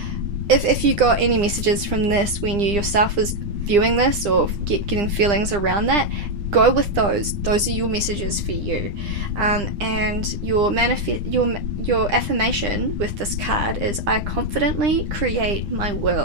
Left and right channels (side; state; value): left; late; 9.9 ms